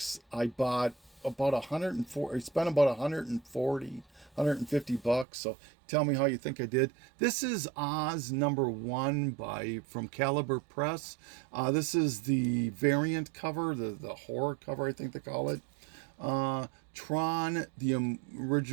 I bought about 140. I spent about 150 bucks. So tell me how you think I did. This is Oz number 1 from Caliber Press. This is the variant cover, the horror cover, I think they call it. Tron, the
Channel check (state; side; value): drops out; left; at 5.2 s